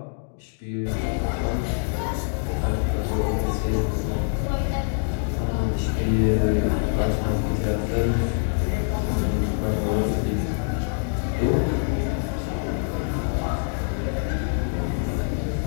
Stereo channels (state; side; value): silent; right; 62 dB below the other